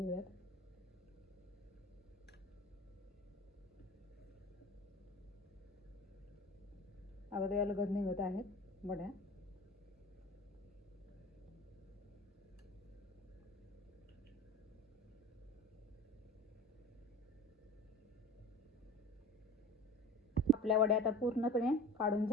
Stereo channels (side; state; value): both; normal; correlation 0.37